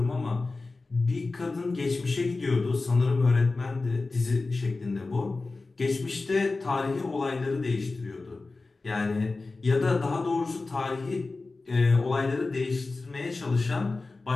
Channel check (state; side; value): quieter; right; 3.6 dB